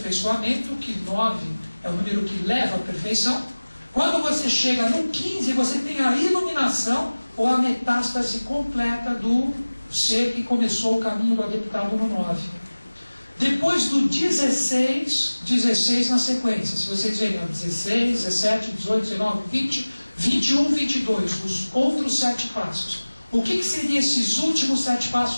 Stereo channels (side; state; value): both; inverted; correlation -1.00